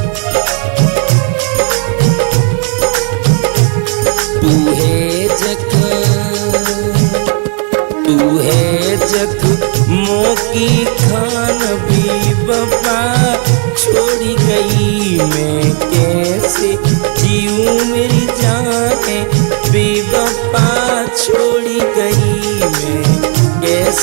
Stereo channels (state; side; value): quieter; left; 38.3 dB